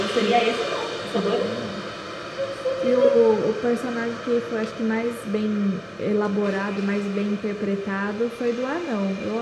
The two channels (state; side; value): identical; both; correlation 1.00